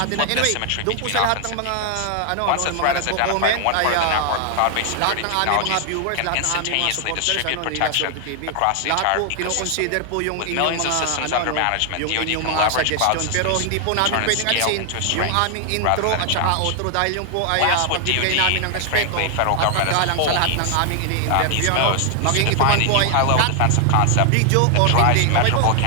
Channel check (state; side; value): different; both; correlation 0.00